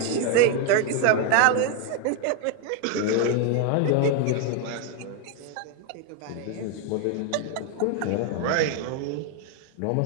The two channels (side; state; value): both; different; correlation 0.01